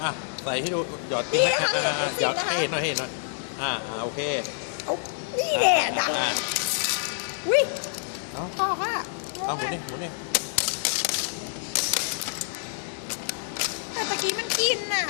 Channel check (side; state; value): right; silent; 60 dB below the other